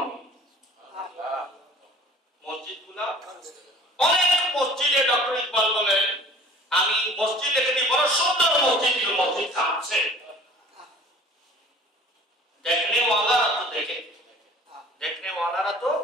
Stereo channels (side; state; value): both; normal; correlation 0.47